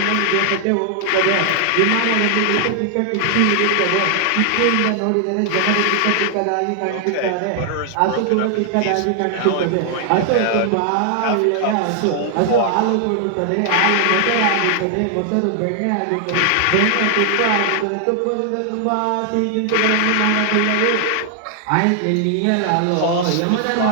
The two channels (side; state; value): both; different; correlation 0.00